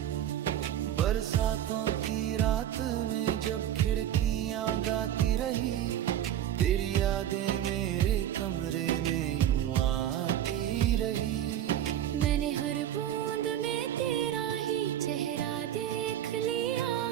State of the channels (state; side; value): quieter; left; 11.2 dB